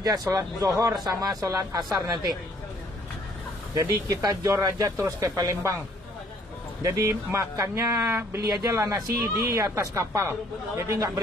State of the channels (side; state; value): both; normal; correlation 0.62